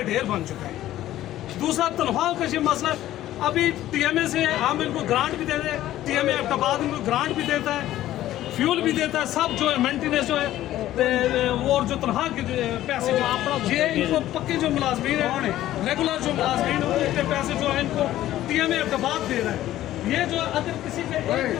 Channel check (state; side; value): quieter; right; 13.9 dB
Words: ढेर बन चुका है। दूसरा तनख्वाह का ये मसला, अभी TMA से हम इनको ग्रांट भी देते हैं, TMA एबटाबाद इनको ग्रांट भी देता है, फ्यूल भी देता है, सब जो है मेंटेनेंस जो है और जो तनख्वाह के पैसे जो आप ये इनको पक्के जो मुलाजमीन है, रेगुलर जो मुलाजमीन है, उनके पैसे जो है इनको TMA एबटाबाद दे रहा है। ये जो अगर किसी के एक